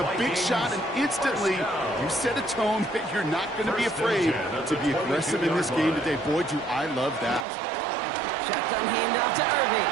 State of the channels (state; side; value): drops out; left; at 7.5 s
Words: big shot, and instantly you set a tone that you're not going to be afraid to be aggressive in this game today. Boy, do I love that. Shotgun handoff to Irving.